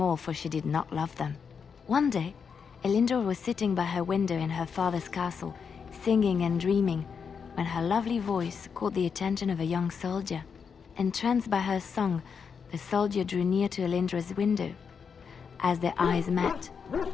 all, for she did not love them. One day, Elindra was sitting by her window in her father's castle, singing and dreaming, when her lovely voice caught the attention of a young soldier. Entranced by her song, the soldier drew near to Elindra's window. As their eyes met,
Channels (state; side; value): quieter; right; 6.3 dB